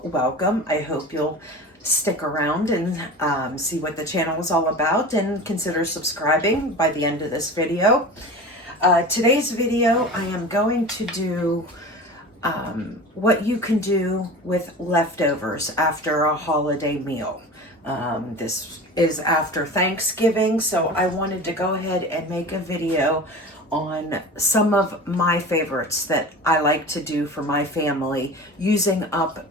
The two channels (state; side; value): normal; both; correlation 0.34